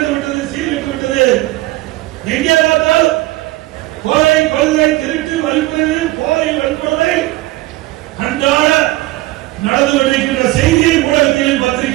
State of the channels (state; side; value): quieter; left; 18.2 dB